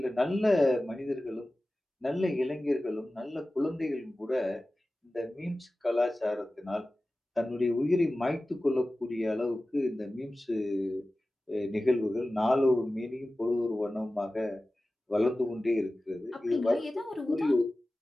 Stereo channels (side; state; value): both; normal; correlation 0.96